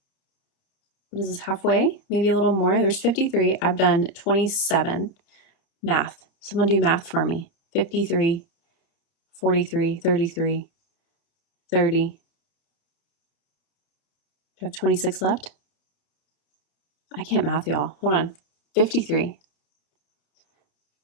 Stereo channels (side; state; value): right; late; 30 ms